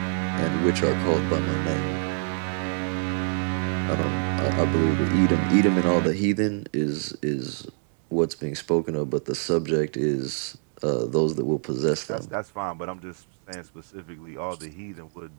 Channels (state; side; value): silent; left; 55 dB below the other